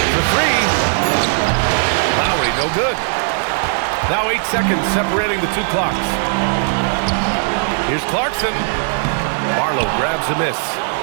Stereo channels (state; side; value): silent; left; digital silence